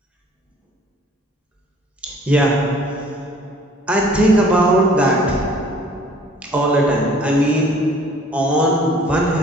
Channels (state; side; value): normal; both; correlation 0.54